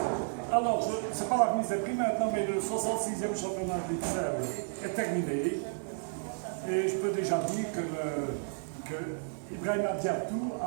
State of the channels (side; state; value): left; silent; digital silence